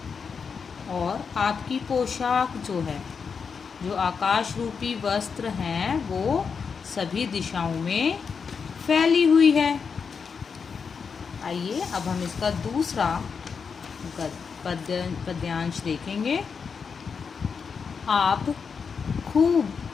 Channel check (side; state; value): right; quieter; 5.9 dB